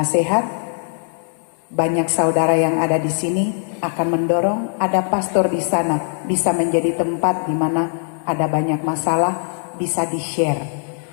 Banyak saudara yang ada di sini akan mendorong. Ada pastor di sana, bisa menjadi tempat di mana ada banyak masalah, bisa di-share.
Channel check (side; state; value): right; silent; digital silence